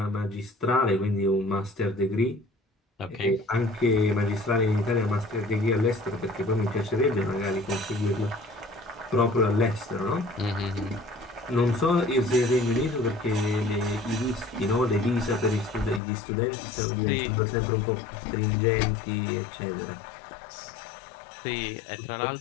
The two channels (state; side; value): drops out; right; at 16.0 s